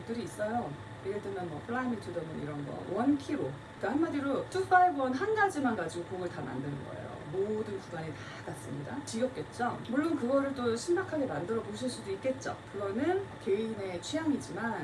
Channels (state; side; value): identical; both; correlation 1.00